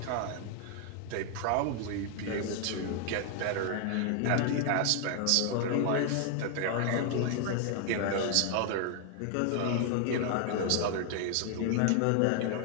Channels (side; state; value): both; different; correlation 0.00